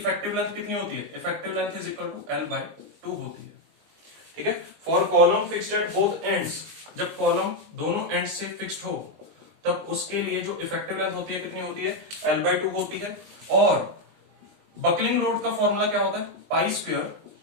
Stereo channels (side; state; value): left; late; 20 ms